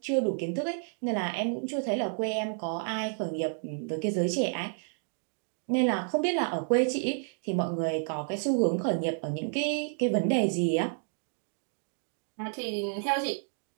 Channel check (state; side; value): silent; left; 57 dB below the other